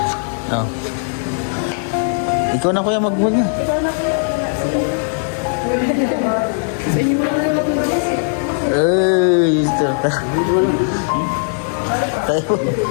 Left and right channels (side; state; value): right; silent; digital silence